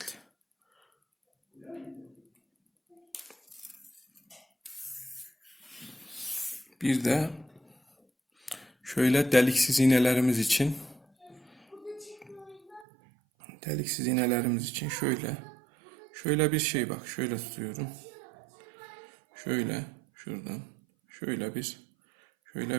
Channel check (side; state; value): left; drops out; at 12.9 s